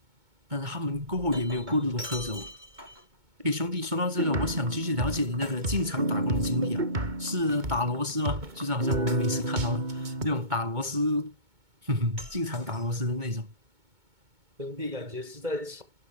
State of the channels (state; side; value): late; left; 2.2 ms